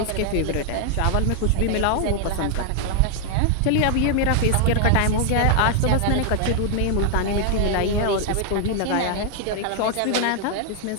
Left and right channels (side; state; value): both; different; correlation 0.00